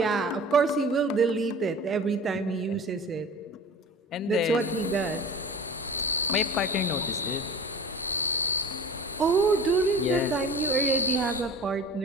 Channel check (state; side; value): normal; both; correlation 0.38